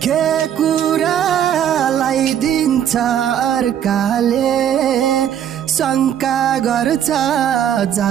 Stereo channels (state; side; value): quieter; left; 9.8 dB